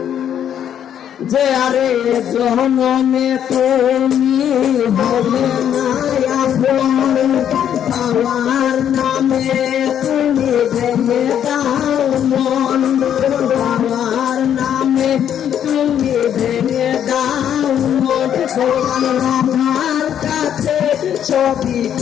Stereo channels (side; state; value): right; quieter; 9.5 dB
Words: যে আরে জনমে তুমি হবে না আপন আমার নামে তুমি ভেঙে দাও মন। আমার নামে তুমি ভেঙে দাও মন। আমার কাছে ছবি